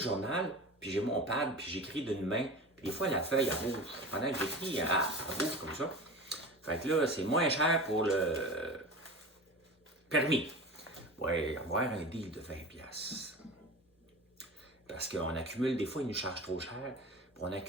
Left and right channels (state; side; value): normal; both; correlation 0.33